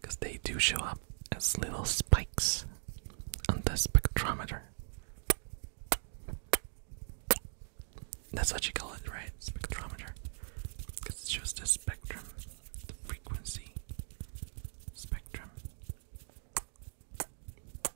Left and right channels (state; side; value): silent; left; digital silence